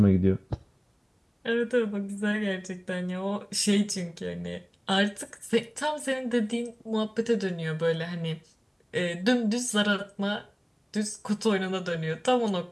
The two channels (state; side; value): identical; both; correlation 1.00